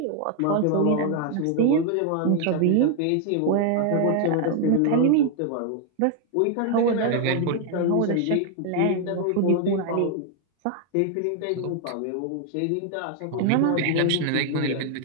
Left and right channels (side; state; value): both; different; correlation 0.00